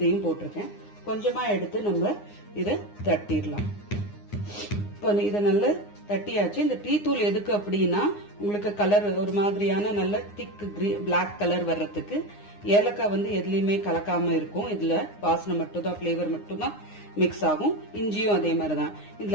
போட்டிருக்கேன். கொஞ்சமா எடுத்து நம்ம இத தட்டிடலாம். இப்போ இத நல்லா தட்டியாச்சு. இந்த டீ தூள் எதுக்கு அப்படின்னா உங்களுக்கு கலர் ஒரு மாதிரியான நல்ல திக் பிளாக் கலர் வர்றதுக்கு. ஏலக்காய் எதுலயுமே கலக்காம இருக்கும். இதுல வாசனை மட்டும் தான், பிளேவர் மட்டும் தான் மிக்ஸ் ஆகும். இஞ்சியும் அதே மாதிரிதான்.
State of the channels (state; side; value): late; right; 9.7 ms